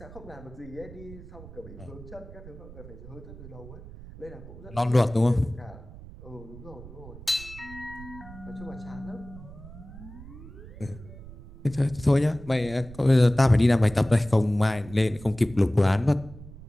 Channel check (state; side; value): noise; right; rumble, 16 dB below the sound